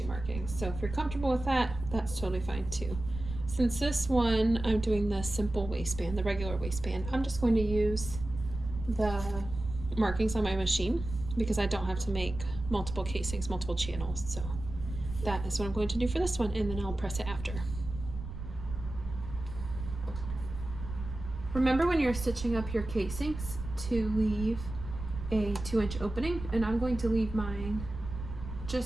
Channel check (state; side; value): noise; right; rumble, 9 dB below the sound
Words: markings. So if you're comfortable with that, that's totally fine too. Since this one, I'm doing the simple waistband, the regular waistband, I'm just going to use the markings on my machine because I don't have to make multiple casings, multiple channels. So that is what I'm going to do for this one, and then I'll press it after. Remember when you're stitching up your casings to leave a 2-inch opening, and I'm going to leave mine